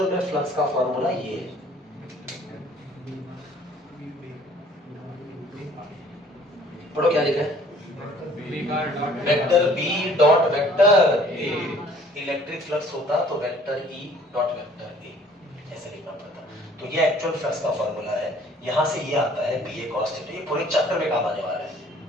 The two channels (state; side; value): normal; both; correlation 0.55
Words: में फ्लक्स का फार्मूला ये है, पढ़ो क्या लिखा है? Vector B dot vector A, electric flux होता तो vector E dot vector A, ऐसे लिखना पड़ता। तो ये एक्चुअल फ्लक्स का फार्मूला है, यहां से ये आता है BA cos थीटा। ये पूरे चैप्टर में काम आने वाला है